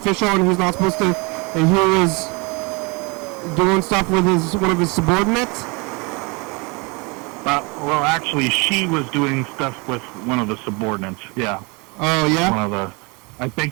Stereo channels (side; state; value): left; quieter; 29.0 dB